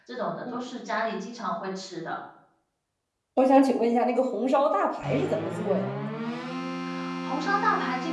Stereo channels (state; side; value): identical; both; correlation 1.00